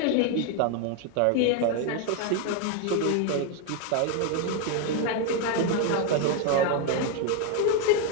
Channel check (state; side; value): different; both; correlation 0.01